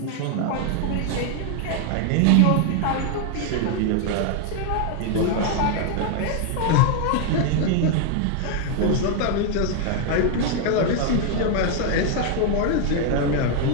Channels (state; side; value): different; both; correlation 0.00